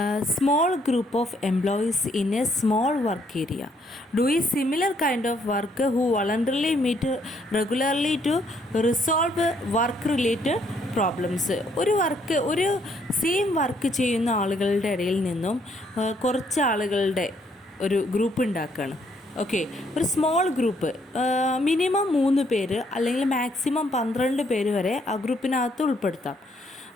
small group of employees in a small work area doing similar kind of work who voluntarily meet regularly to resolve work related problems. ഒരു same work ചെയ്യുന്ന ആളുകളുടെ ഇടയിൽ നിന്നും കുറച്ച് ആളുകളുടെ ഒരു ഗ്രൂപ്പ് ഉണ്ടാക്കുകയാണ്. ഓക്കെ, ഒരു സ്മോൾ ഗ്രൂപ്പ്, മിനിമം 3 പേര് അല്ലെങ്കിൽ മാക്സിമം 12 പേര് വരെ ആ ഗ്രൂപ്പിനകത്ത് ഉൾപ്പെടുത്താം.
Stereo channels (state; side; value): normal; both; correlation 0.69